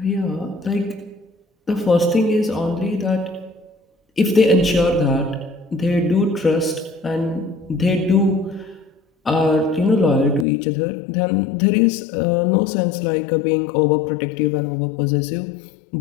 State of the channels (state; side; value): drops out; right; at 10.5 s